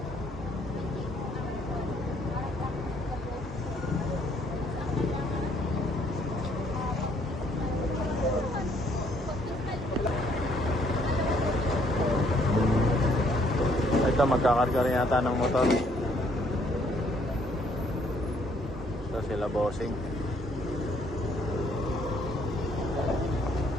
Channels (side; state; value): both; normal; correlation 0.66